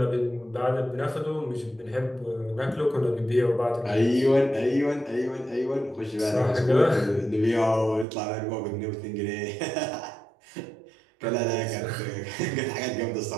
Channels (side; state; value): left; drops out; at 8.1 s